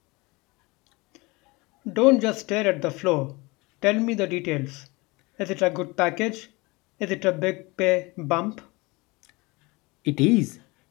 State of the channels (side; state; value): right; quieter; 24.4 dB